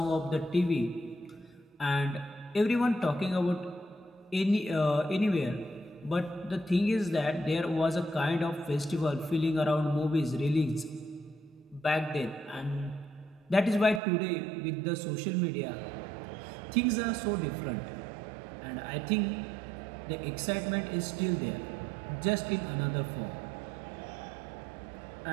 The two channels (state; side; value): drops out; left; at 14.0 s